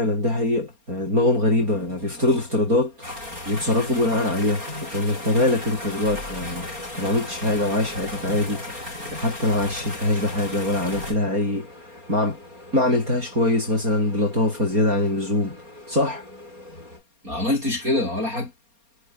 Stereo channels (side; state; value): left; late; 4.3 ms